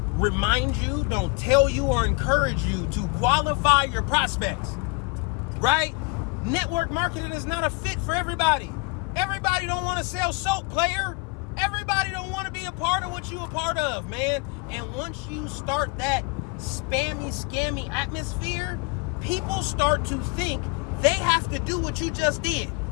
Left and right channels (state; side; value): quieter; right; 28.9 dB